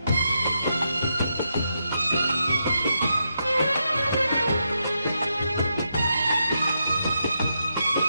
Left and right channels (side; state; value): both; inverted; correlation -0.83